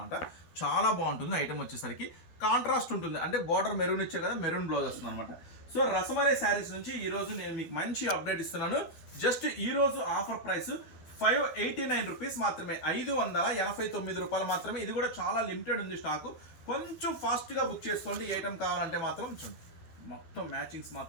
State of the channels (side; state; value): right; late; 12 ms